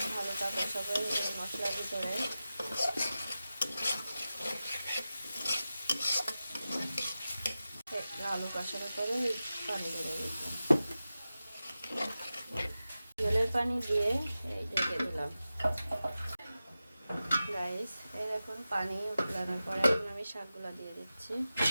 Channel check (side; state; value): both; inverted; correlation -0.94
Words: আলুটা কষাবে এই মশলার ভিতরে। আলু কষানোর পরে পানি দিয়ে দিলাম, জলের পানি দিয়ে এই ঢেকে দিলাম। গাইস, এই এখন পানি উঠানোর পরে এখন আমি শাকগুলো দিয়ে দিচ্ছি।